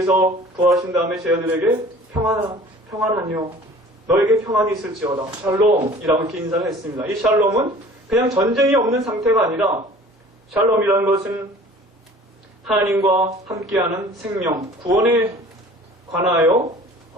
부활하신 다음에 제자들에게 평안하뇨 너에게 평안이 있을지어다. 샬롬이라고 이렇게 인사를 했습니다. 이 샬롬은 그냥 전쟁이 없는 상태가 아니라 샬롬이라는 것은 하나님과 함께하는 생명, 구원에 관하여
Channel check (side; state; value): both; normal; correlation 0.47